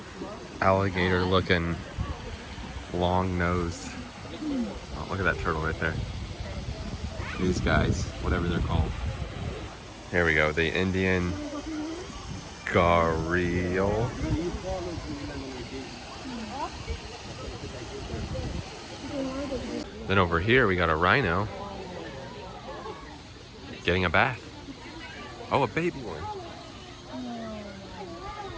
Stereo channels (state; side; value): identical; both; correlation 1.00